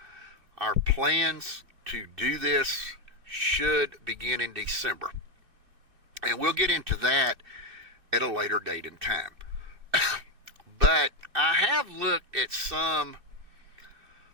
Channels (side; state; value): left; late; 2.6 ms